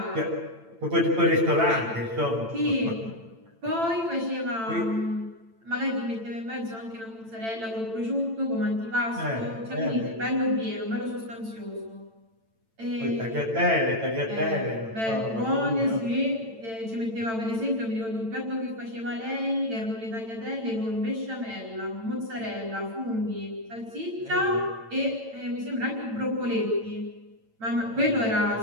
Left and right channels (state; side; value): late; left; 8.9 ms